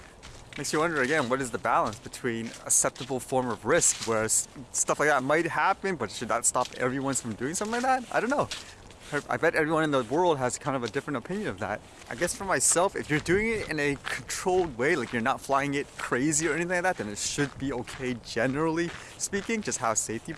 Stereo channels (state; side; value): identical; both; correlation 1.00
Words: Makes you wonder again, what is the balance between acceptable form of risk, where stuff like that might happen, but should that stop everyone from doing something like that? I don't know. I bet everyone in the world has kind of a different opinion of that. I guess for myself, if you're doing it in a controlled way, like you're not flying it crazy or anything like that, then it should be okay generally speaking, just have safety